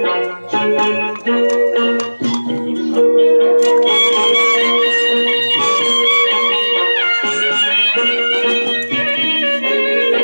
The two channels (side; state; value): both; inverted; correlation -1.00